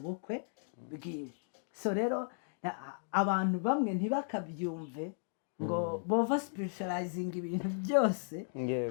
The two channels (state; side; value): silent; right; digital silence